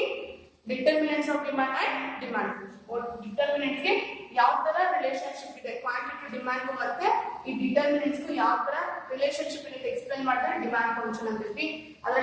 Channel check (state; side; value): identical; both; correlation 1.00